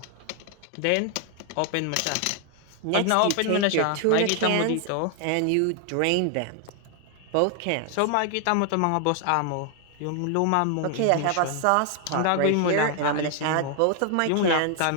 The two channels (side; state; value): both; different; correlation 0.00